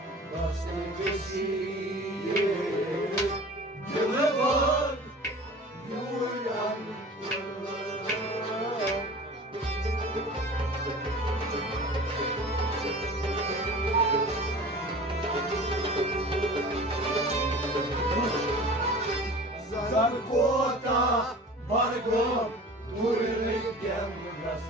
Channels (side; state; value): both; normal; correlation 0.40